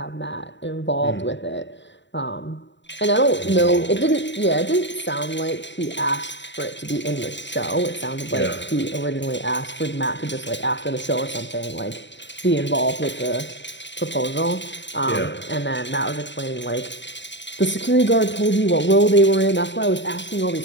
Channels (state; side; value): late; right; 0.52 ms